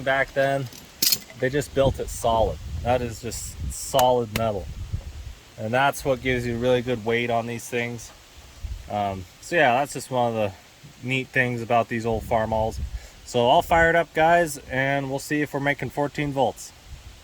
back then, they just built it solid. That is just solid metal. And that's what gives you really good weight on these things. So yeah, that's just one of the neat things about these old Farmalls. So I'll fire it up, guys, and we'll see if we're making 14 volts.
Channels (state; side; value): identical; both; correlation 1.00